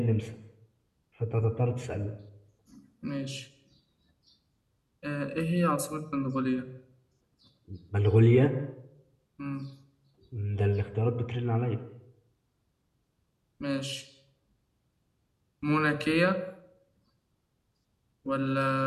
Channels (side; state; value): both; identical; correlation 1.00